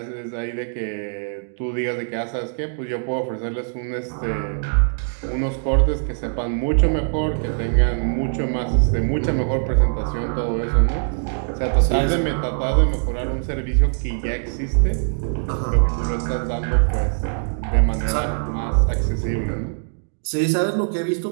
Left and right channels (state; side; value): silent; left; digital silence